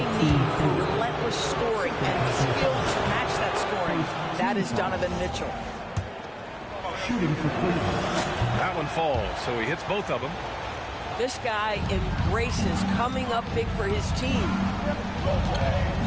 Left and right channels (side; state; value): both; identical; correlation 1.00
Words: need for relentless scoring and skill to match that scoring. That is Donovan Mitchell. Shooting for Cleveland. That one falls, so he hits both of them. This guy embraces coming up big for his team.